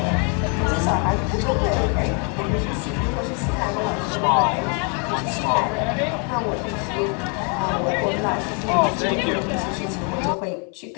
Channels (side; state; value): right; quieter; 36.9 dB